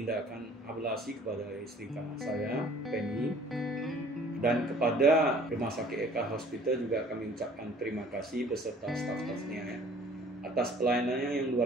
ablasi kepada istri saya, Penny. Dan kepada Rumah Sakit Eka Hospital juga kami ucapkan terima kasih beserta staf-stafnya ya, atas pelayanannya yang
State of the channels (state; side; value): normal; both; correlation 0.53